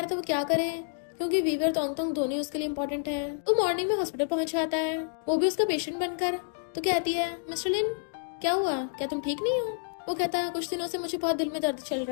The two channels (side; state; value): right; silent; digital silence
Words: था वो क्या करे, क्योंकि वीवे और तोंगतोंग दोनों उसके लिए इम्पोर्टेंट है। वो मॉर्निंग में हॉस्पिटल पहुंच जाता है, वो भी उसका पेशेंट बनकर। तो कहती है मिस्टर लिन क्या हुआ, क्या तुम ठीक नहीं हो। वो कहता है कुछ दिनों से मुझे बहुत दिल में दर्द चल